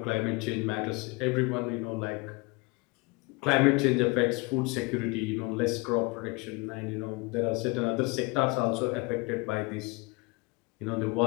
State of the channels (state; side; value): quieter; right; 27.1 dB